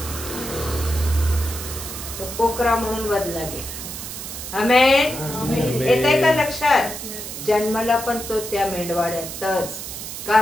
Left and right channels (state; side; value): noise; right; hiss, 8 dB below the sound